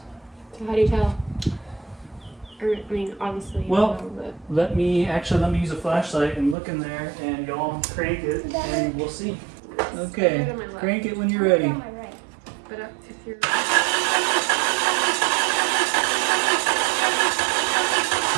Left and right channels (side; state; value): left; drops out; at 6.6 s